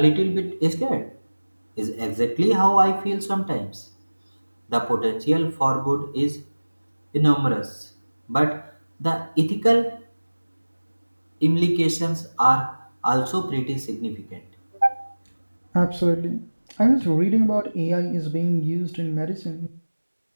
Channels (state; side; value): inverted; both; correlation -1.00